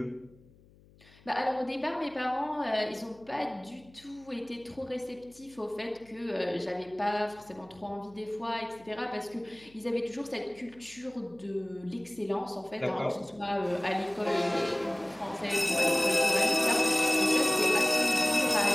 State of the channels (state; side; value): noise; left; hum, 27 dB below the sound